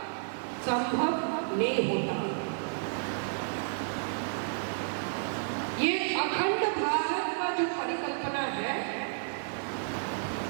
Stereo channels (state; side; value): silent; left; digital silence